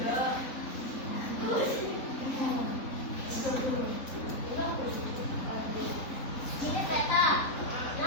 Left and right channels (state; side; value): late; right; 3.8 ms